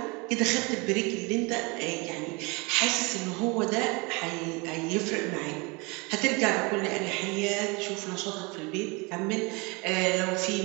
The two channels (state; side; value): quieter; left; 27.9 dB